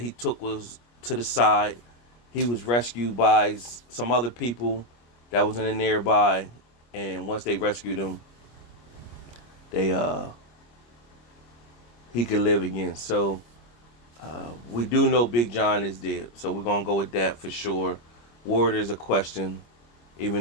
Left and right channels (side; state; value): right; late; 25 ms